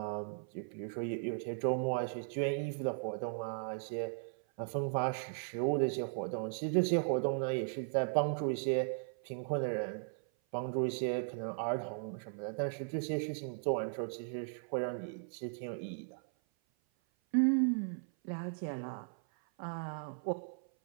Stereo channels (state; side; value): silent; left; 53 dB below the other